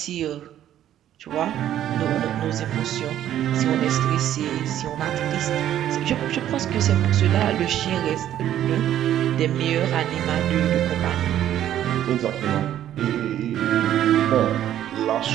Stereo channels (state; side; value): quieter; left; 11.5 dB